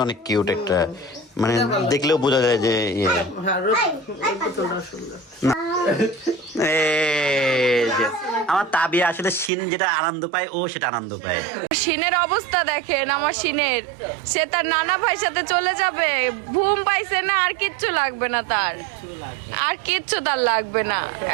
অনেক কিউট একটা, মানে দেখলেও বোঝা যায় যে আমার তাবিয়া আসলে শিন যেটা আনন্দ পায়, ও সেটা আনন্দ পায়। শিনের অবস্থা দেখেন, আমার শিনের, সে তার নানা ভাইয়ের সাথে চলে যাবে। ঘুম পাইছে না, আর কিচ্ছু লাগবে না তার, আর কিচ্ছু তার লাগবে না।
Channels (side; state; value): left; drops out; at 9.5 s